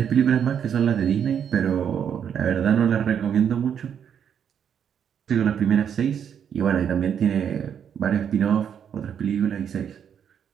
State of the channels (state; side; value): quieter; left; 8.2 dB